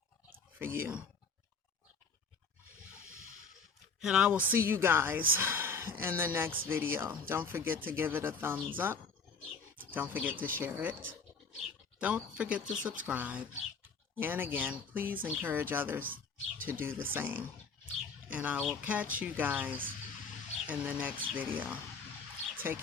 for you. And I will see you guys in the next video. Don't forget to give it a thumbs up. Don't forget to share it. Don't forget to subscribe. And again, please encourage others to do the same. And I will catch you guys in the next video. Take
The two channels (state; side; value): quieter; right; 4.8 dB